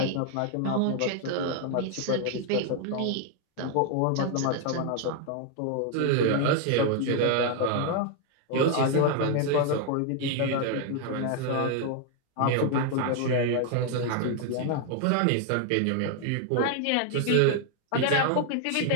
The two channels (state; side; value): different; both; correlation 0.00